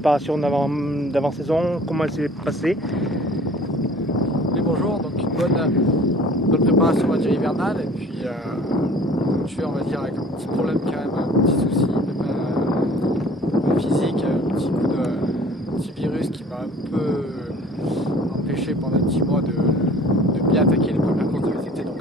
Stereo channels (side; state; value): both; normal; correlation 0.49